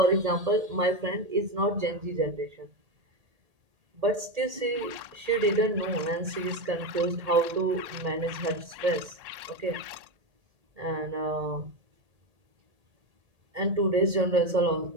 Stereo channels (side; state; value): left; late; 1.8 ms